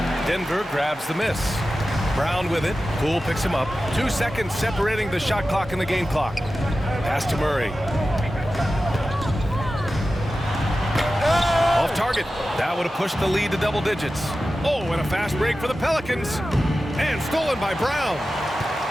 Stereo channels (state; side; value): normal; both; correlation 0.94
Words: Denver grabs the miss. Brown with it. Poole picks him up. 2 seconds separating the shot clock and the game clock. Pass to Murray. Off target. That would have pushed the lead to double digits. Oh, and a fast break for the Pelicans. And stolen by Brown.